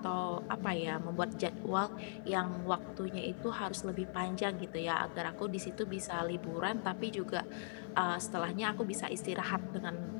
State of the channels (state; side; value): silent; right; 51 dB below the other